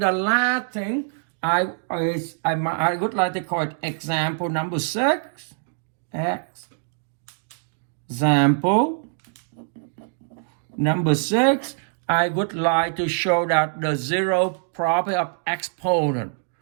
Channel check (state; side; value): silent; left; digital silence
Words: last thing I would like to call it example number 6. Example number 6. I would like to show that the zero property of exponent.